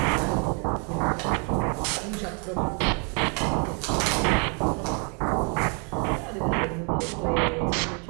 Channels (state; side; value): quieter; left; 37.3 dB